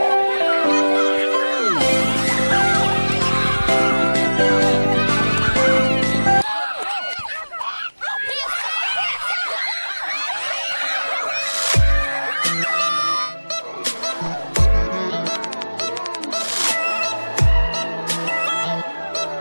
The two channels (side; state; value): both; inverted; correlation -1.00